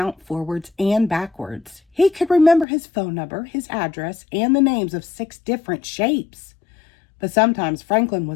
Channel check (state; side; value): drops out; right; at 2.7 s